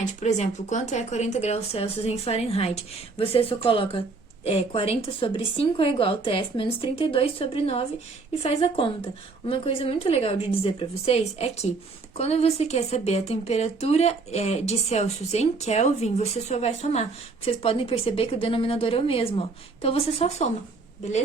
Por exemplo, quanto é 40 graus Celsius em Fahrenheit. Você só coloca 40 sobre 5 é igual a TF menos 32 sobre 9 e faz a conta. Uma coisa muito legal de dizer para vocês é que quando você quer saber a temperatura de Celsius em Kelvin, você só vai somar. Vocês podem perceber que o denominador é o mesmo, ó. Então, você só soma,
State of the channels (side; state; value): left; quieter; 4.0 dB